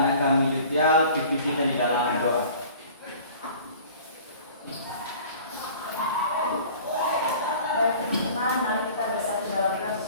anak kami Yutial, pimpin di dalam doa. Mari kita bersatu dalam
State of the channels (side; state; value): both; inverted; correlation -0.46